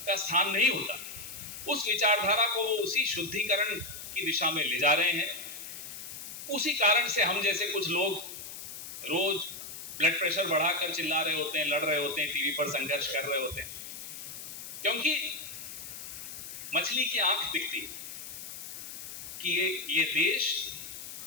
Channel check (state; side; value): noise; left; hiss, 10 dB below the sound